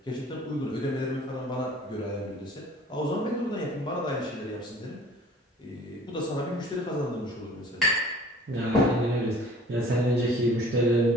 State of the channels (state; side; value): normal; both; correlation 0.50